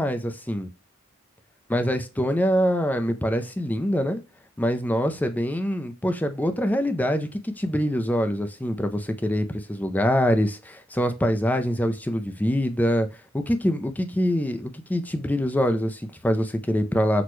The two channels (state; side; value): normal; both; correlation 0.88